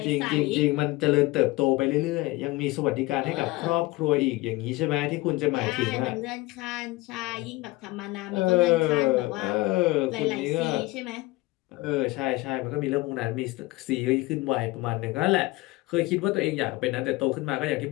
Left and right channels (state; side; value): quieter; right; 20.7 dB